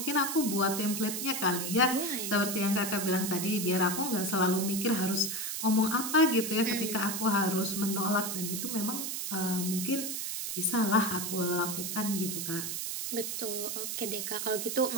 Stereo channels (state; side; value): noise; right; hiss, 3 dB below the sound